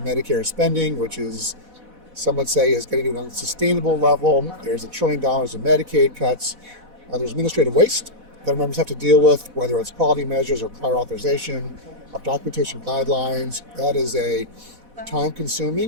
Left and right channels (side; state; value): left; late; 4.1 ms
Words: spending, which is, some would say, is getting to an unsustainable level. There's $1 trillion in Medicaid cuts. There's administrative waste that members have to deal with, whether it's quality measures or prior authorization, of documentation guidelines. That is a